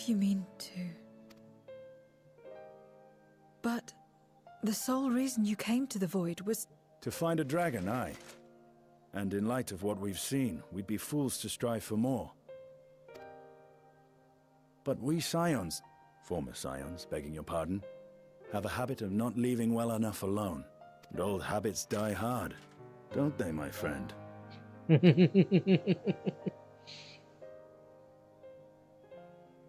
you mean to... But the sole reason you came to the Void was... To find a dragon, aye. And in light of what we've seen, we'd be fools to strive for more. But we Scions, former Scions, begging your pardon, have a habit of not leaving well enough alone. And old habits die hard, don't they, my friend?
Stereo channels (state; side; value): identical; both; correlation 1.00